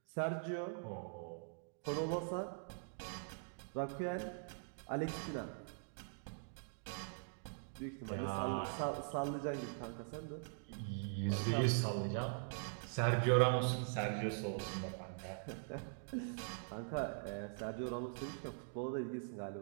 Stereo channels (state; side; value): silent; left; digital silence